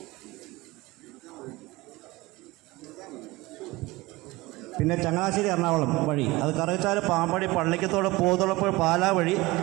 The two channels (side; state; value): left; quieter; 21.0 dB